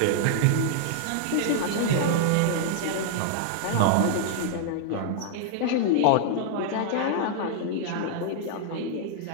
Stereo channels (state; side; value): different; both; correlation -0.01